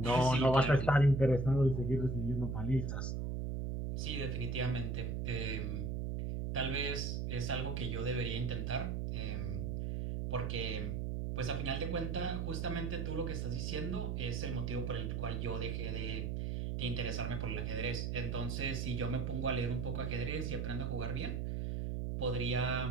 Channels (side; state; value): right; noise; hum, 1 dB below the sound